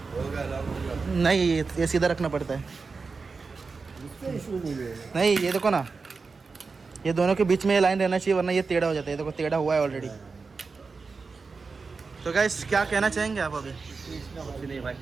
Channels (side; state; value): left; quieter; 4.5 dB